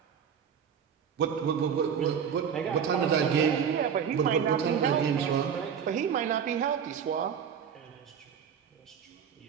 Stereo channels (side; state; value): left; quieter; 7.6 dB